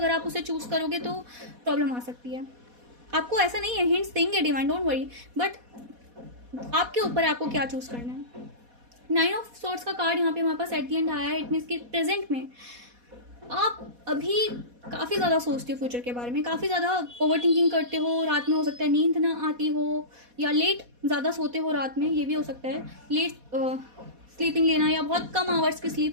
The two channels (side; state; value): left; late; 4.1 ms